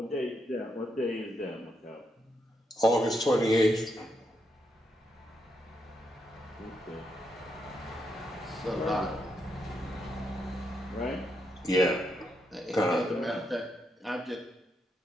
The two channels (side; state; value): both; normal; correlation 0.80